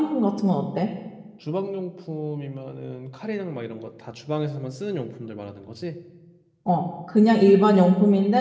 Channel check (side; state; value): both; identical; correlation 1.00